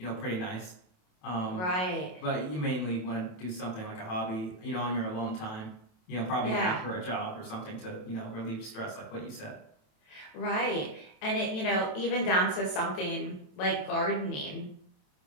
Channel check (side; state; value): right; late; 27 ms